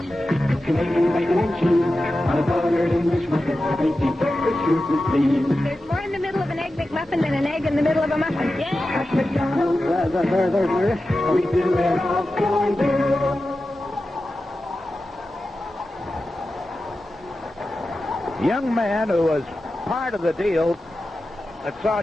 Canadian bacon and cheese on a buttered English muffin. Tasty breakfast sure to please. There's more in the middle of an Egg McMuffin than an egg in the middle of a muffin. Yeah. At McDonald's, we do it all for you. Young man who was part of the deal that saw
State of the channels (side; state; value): both; normal; correlation 0.93